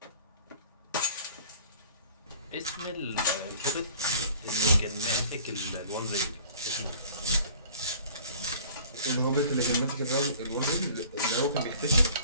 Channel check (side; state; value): both; inverted; correlation -0.48